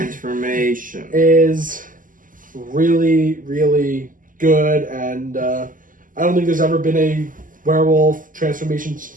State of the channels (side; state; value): left; late; 0.39 ms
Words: Is really, really good, and I don't think there's ever been a werewolf transformation